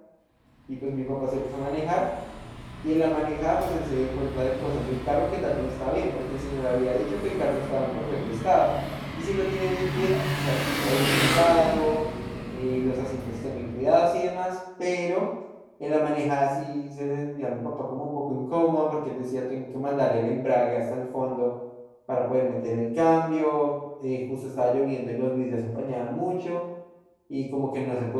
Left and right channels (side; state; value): both; identical; correlation 1.00